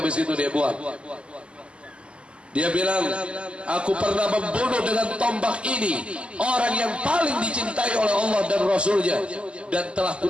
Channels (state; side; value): late; left; 0.053 ms